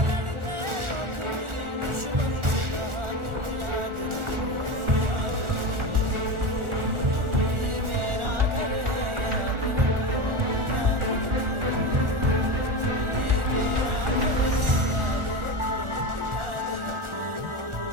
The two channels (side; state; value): left; late; 1.4 ms